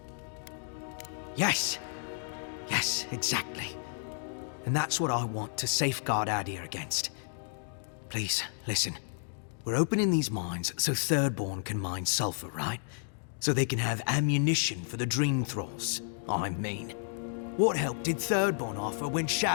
Yes! Yes, exactly. And that's what I want to safeguard Adir against. Please, listen. We're opening these mines so Thirdborn can mine sulfur, right? So they can have ammunition for the Dream Thralls. I mean. What help did Thirdborn offer when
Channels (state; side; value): silent; right; digital silence